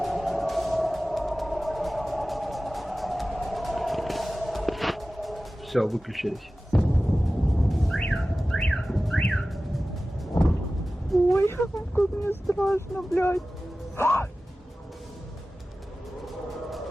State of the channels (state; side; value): normal; both; correlation 0.96